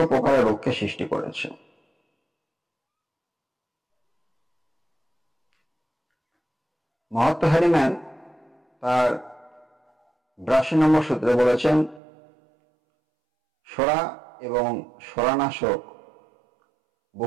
প্রকারের রোগকে সৃষ্টি করেছে। মহাত্মা হ্যানিম্যান তার ৮২ নম্বর সূত্রে বলেছেন, সোরা এবং সোরানাশক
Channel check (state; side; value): drops out; left; at 12.0 s